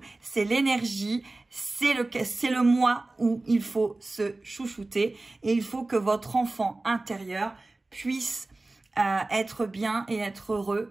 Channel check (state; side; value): quieter; left; 3.0 dB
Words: c'est l'énergie, c'est le mois où il faut se chouchouter et il faut que votre enfant intérieur puisse être bien et être heureux